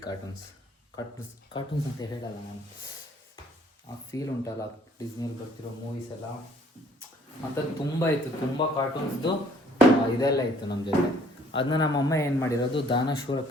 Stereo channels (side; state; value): both; normal; correlation 0.59